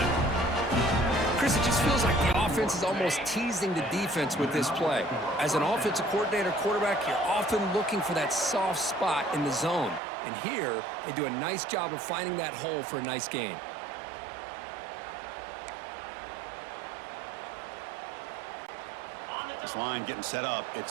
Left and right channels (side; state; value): left; drops out; at 10.0 s